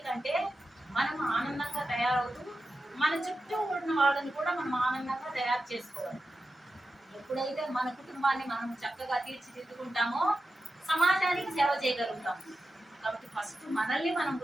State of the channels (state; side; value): normal; both; correlation 0.91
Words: మనం ఆనందంగా తయారవుతూ మన చుట్టూ ఉన్న వాళ్ళని కూడా మనం ఆనందంగా తయారు చేసుకోవాలి. ఎప్పుడైతే మన కుటుంబాన్ని మనం చక్కగా తీర్చిదిద్దుకుంటామో సమాజానికి సేవ చేయగలుగుతాం. కాబట్టి ఫస్ట్ మనల్ని మనం